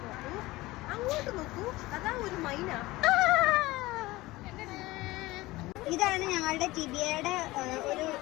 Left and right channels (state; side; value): quieter; right; 19.5 dB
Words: ഇതാണ് ഞങ്ങളുടെ ടിബിയയുടെ ഒരു